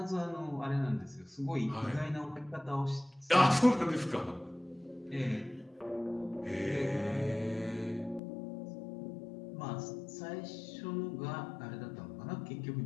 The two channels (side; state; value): right; drops out; at 8.2 s